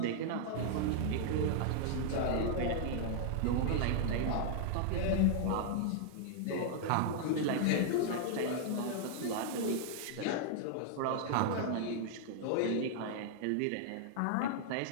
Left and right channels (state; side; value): different; both; correlation -0.01